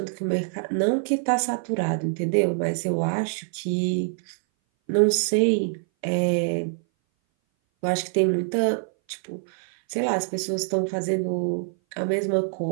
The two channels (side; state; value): left; silent; 59 dB below the other